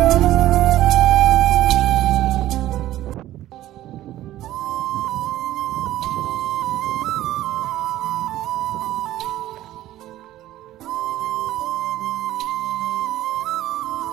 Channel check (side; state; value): left; quieter; 14.2 dB